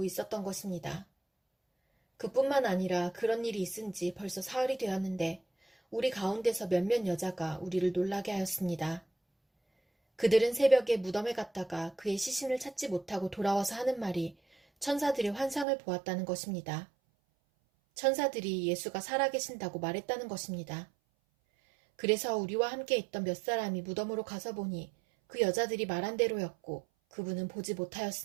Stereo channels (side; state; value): left; drops out; at 15.7 s